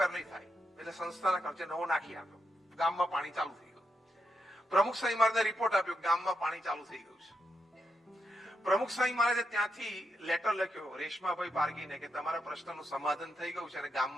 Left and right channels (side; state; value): both; normal; correlation 0.83